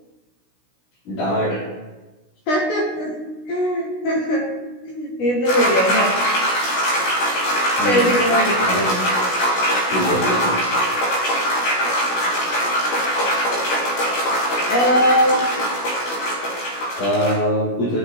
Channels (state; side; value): late; right; 16 ms